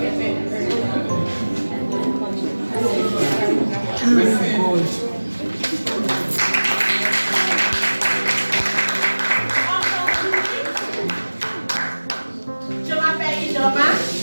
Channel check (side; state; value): both; inverted; correlation -1.00